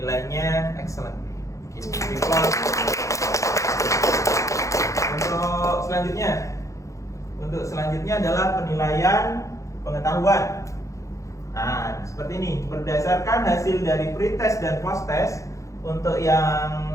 excellent. Untuk selanjutnya adalah penilaian pengetahuan. Nah, seperti ini. Berdasarkan hasil dari pretest dan post-test, untuk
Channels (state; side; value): late; right; 0.15 ms